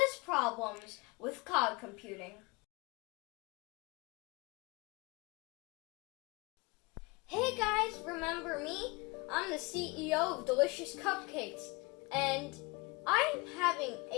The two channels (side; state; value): right; quieter; 26.0 dB